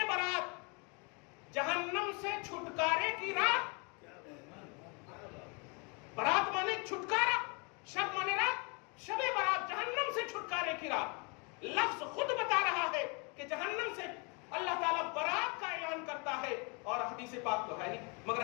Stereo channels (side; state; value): right; quieter; 32.4 dB